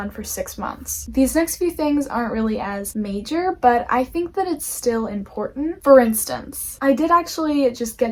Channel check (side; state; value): both; identical; correlation 1.00